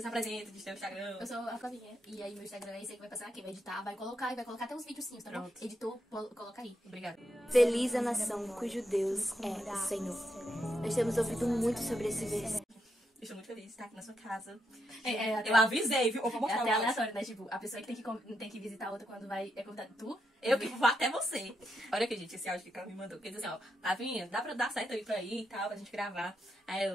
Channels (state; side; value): normal; both; correlation 0.82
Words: diz teu Instagram. Eu sou a Flavinha. E aí meu Instagram é esse aí que vai passar aqui. Vai editar, vai colocar até uns videozinhos, tá bom? Pronto. Editor, coloca aí. Obrigada. Feliz a nação cujo Deus é o Senhor. Nós temos ouvido muito sobre esse versículo. Estou muito feliz de estar aqui na sua casa. Até Eu avisei, viu? Eu vou é mostrar até o aleatório, né? Tipo, a pessoa que tem que visitar a outra quando vai é convidada. Tu? Eu que vou até você. Olha aqui, gente, esse áudio que ela me mandou. Porque diz assim, ó, Flavinha, dá pra dar certo aí pra ir e tal, pra gente gravar.